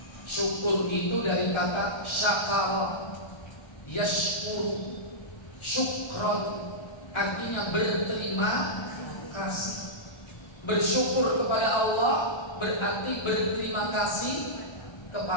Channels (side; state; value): right; late; 1.3 ms